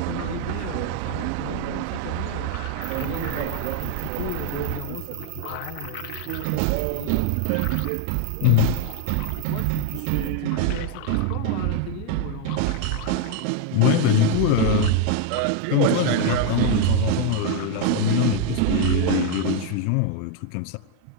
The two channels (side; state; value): both; different; correlation 0.00